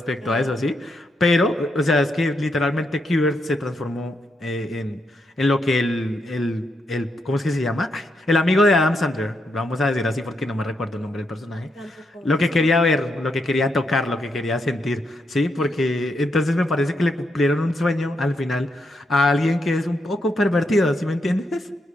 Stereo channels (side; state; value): both; normal; correlation 0.81